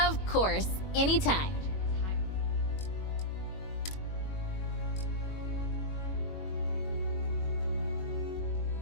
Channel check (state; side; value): late; right; 21 ms